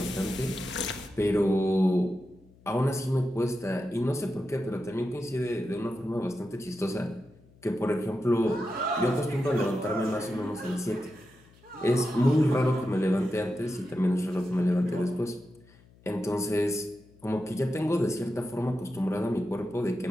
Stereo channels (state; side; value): noise; left; hum, 27 dB below the sound